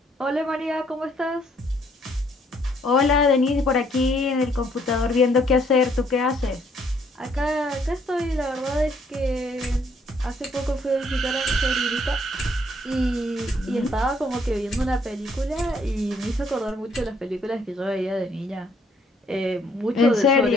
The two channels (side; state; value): both; normal; correlation 0.67